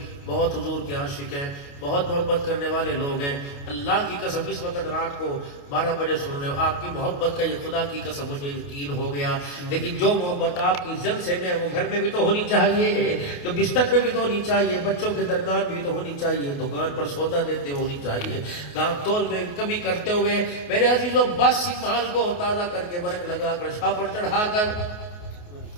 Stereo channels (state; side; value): late; right; 28 ms